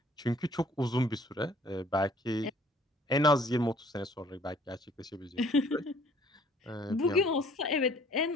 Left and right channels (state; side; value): normal; both; correlation 0.57